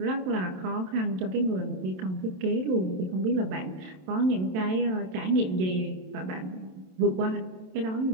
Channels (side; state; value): left; late; 27 ms